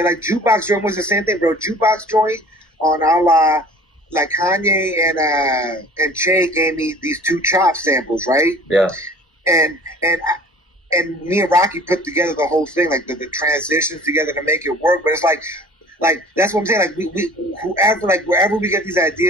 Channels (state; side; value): normal; both; correlation 0.46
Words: Like Jukebox Joint was the same thing, bro. Jukebox Joint on awge, like Kanye and Che gave me these 2 Chop samples, right? Yeah. And me and Rocky put together the whole thing, like the transitions together to make it work. But it's like that's what I'm saying. Like we whoever, like wherever we get these